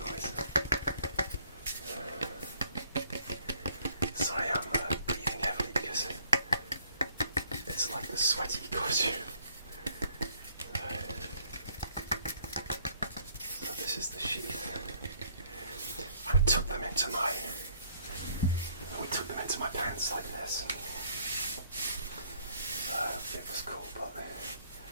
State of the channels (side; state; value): both; inverted; correlation -0.63